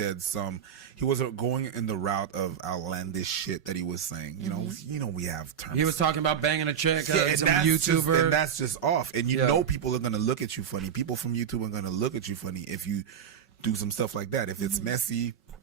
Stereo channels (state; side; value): quieter; left; 8.4 dB